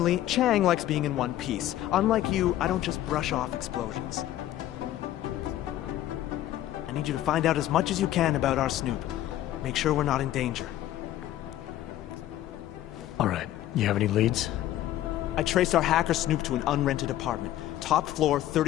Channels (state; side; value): quieter; right; 13.4 dB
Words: Chang likes being in one piece. Unlike you, I don't just brush off explosions. I need you to find out as much as you can about our Snoop. Make sure we're not in danger. All right. You have any leads? I traced our hacker Snoop to an unrented apartment. Top floor,